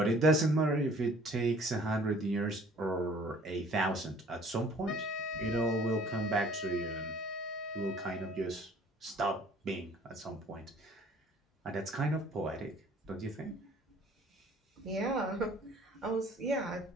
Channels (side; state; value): both; normal; correlation 0.54